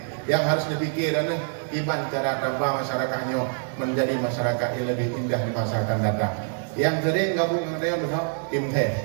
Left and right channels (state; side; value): silent; left; 61 dB below the other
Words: Yang harus dipikir adalah iman cara tambah masyarakatnya menjadi masyarakat yang lebih indah di masa akan datang. Yang sering gabung dengan saya besok tim teh.